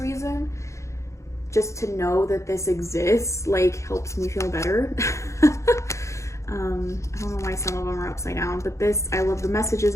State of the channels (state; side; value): late; right; 0.14 ms